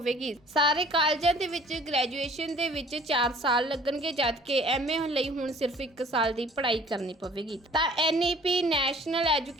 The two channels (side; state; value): both; normal; correlation 0.52